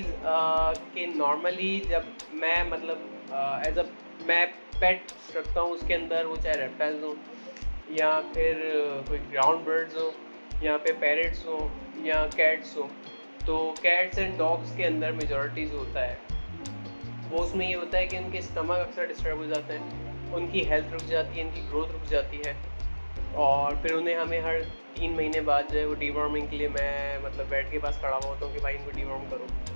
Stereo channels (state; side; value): inverted; both; correlation -1.00